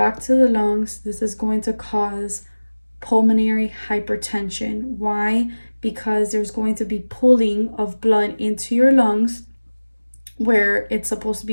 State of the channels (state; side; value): inverted; both; correlation -1.00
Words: to the lungs, this is going to cause pulmonary hypertension. Why? Because there's going to be pulling of blood into your lungs where it's supposed to